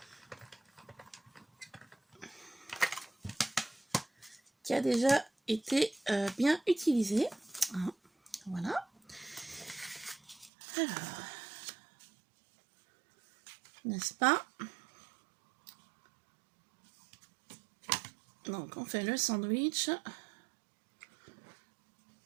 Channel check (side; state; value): left; drops out; at 10.5 s